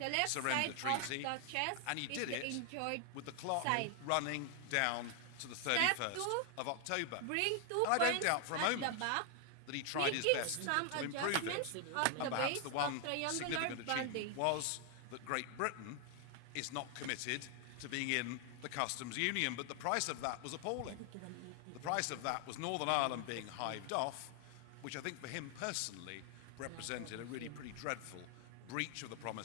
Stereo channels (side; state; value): both; different; correlation 0.00